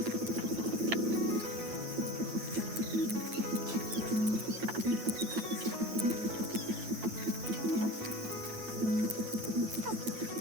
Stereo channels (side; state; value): left; late; 9.1 ms